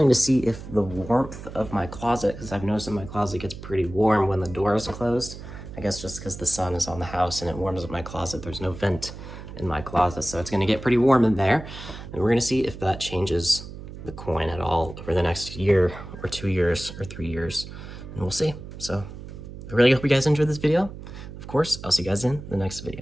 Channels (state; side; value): noise; right; hum, 12 dB below the sound